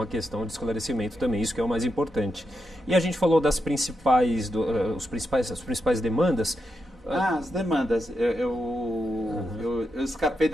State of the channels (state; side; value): normal; both; correlation 0.85